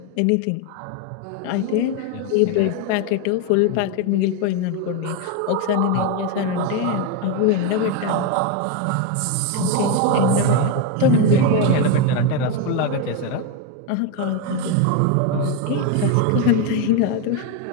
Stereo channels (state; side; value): different; both; correlation 0.02